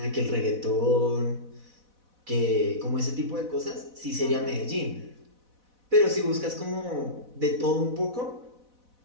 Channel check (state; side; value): late; left; 4.1 ms